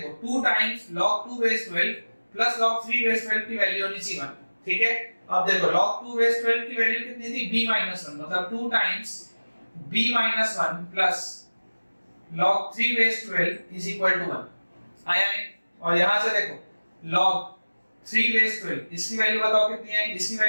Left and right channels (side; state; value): both; inverted; correlation -1.00